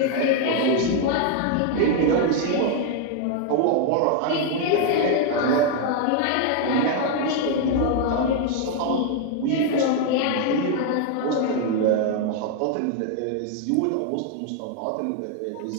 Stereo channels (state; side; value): different; both; correlation 0.00